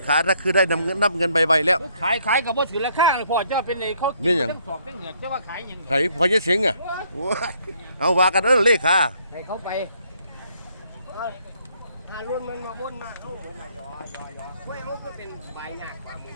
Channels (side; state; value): both; inverted; correlation -0.68